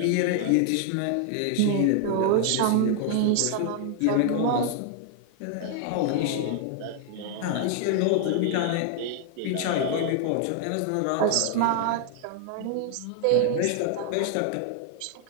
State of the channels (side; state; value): both; different; correlation 0.00